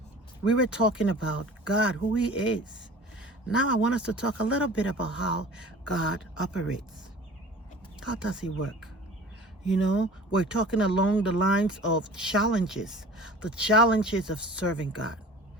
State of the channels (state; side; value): normal; both; correlation 0.43